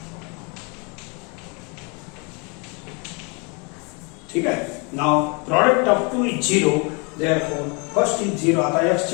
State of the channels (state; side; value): quieter; right; 32.2 dB